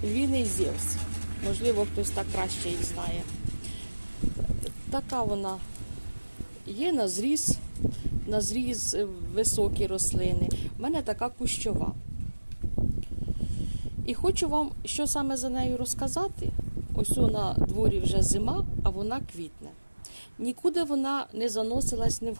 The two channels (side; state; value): both; inverted; correlation -1.00